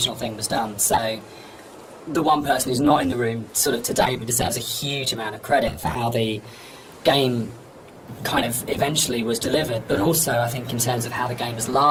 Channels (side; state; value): both; identical; correlation 1.00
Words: thing was done. So the one person who's not in the room sort of today but deserves a huge amount of credit for how the game kind of eventually was delivered, but also I think in terms of how the game has